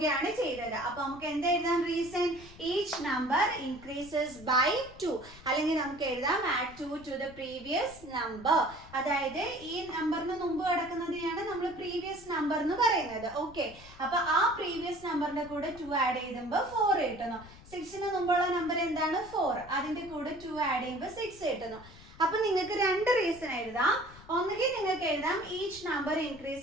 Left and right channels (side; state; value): left; noise; rumble, 20 dB below the sound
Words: ചെയ്തത്. അപ്പൊ നമുക്ക് എന്താ എഴുതാം? Reason each number increases by 2. അല്ലെങ്കിൽ നമുക്ക് എഴുതാം add 2 to the previous number. അതായത് ഈ നമ്പറിന് മുമ്പ് കിടക്കുന്നതിനെയാണ് നമ്മൾ പ്രീവിയസ് നമ്പർ എന്ന് പറയുന്നത്. ഓക്കെ, അപ്പൊ ആ പ്രീവിയസ് നമ്പറിന്റെ കൂടെ 2 ആഡ് ചെയ്യുമ്പോൾ 4 കിട്ടുന്നു. 6ന് മുമ്പുള്ള നമ്പർ എന്താണ്? 4. അതിന്റെ കൂടെ 2 ആഡ് ചെയ്യുമ്പോൾ 6 കിട്ടുന്നു. അപ്പൊ നിങ്ങൾക്ക് 2 റീസൺ എഴുതാം. ഒന്നുകിൽ നിങ്ങൾക്ക് എഴുതാം ഈച്ച് നമ്പർ